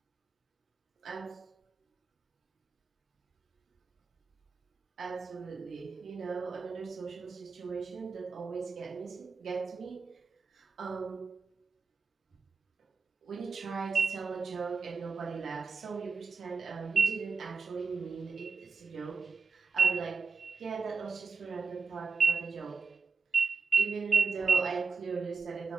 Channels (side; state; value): left; quieter; 4.7 dB